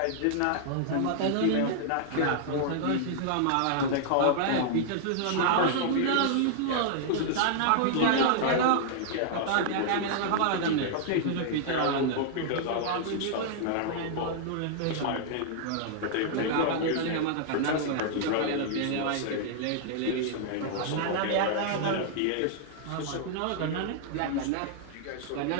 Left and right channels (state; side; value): different; both; correlation -0.01